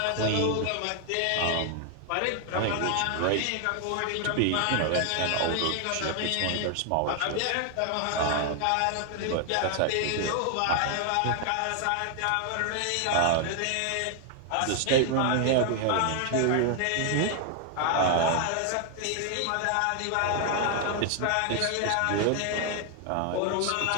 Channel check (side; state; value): both; different; correlation 0.00